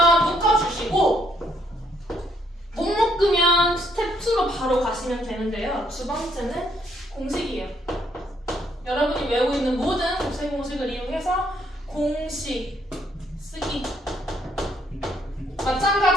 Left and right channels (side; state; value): both; normal; correlation 0.70